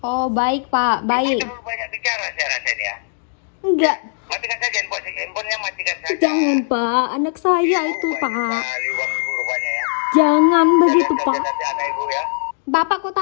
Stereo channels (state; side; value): silent; right; digital silence